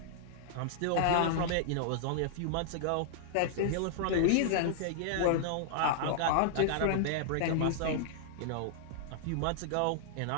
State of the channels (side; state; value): both; different; correlation -0.01